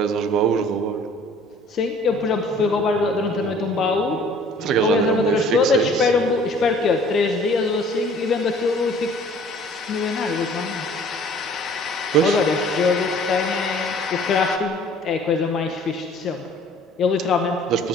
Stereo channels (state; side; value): normal; both; correlation 0.52